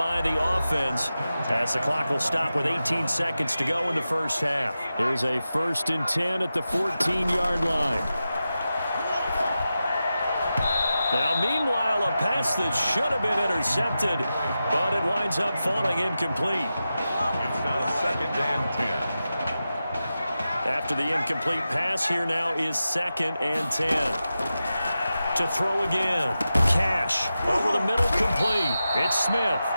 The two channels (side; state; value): both; inverted; correlation -0.92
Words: the offense as the clock will stop with 18 seconds to go in the first half. Here's a 1st and 10 at the 14-yard line. Now, meanwhile, a pass that should have been intercepted, but it winds up falling incomplete. It's now 2nd and 10. After the incomplete pass, here now is 2nd and 10. To throw again. Cash over the middle, complete. It's Smith.